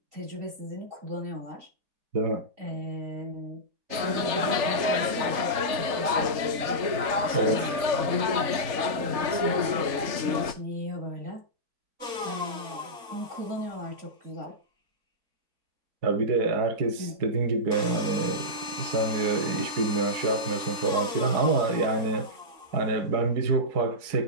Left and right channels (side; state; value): left; late; 3.4 ms